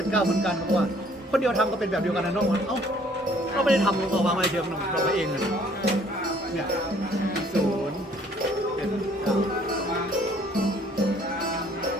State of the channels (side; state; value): both; normal; correlation 0.59